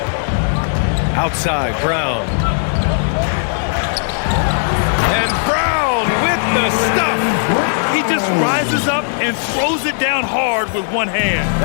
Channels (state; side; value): silent; right; 58 dB below the other